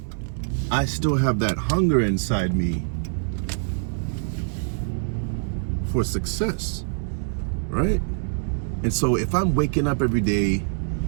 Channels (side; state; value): left; silent; digital silence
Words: I still have that hunger inside me for success, right? And so if I'm waking up every day,